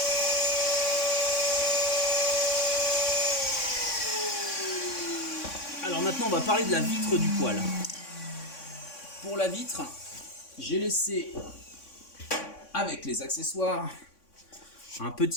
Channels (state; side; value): late; right; 3.6 ms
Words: Alors maintenant on va parler de la vitre du poêle. Pour la vitre, j'ai laissé avec les accessoires un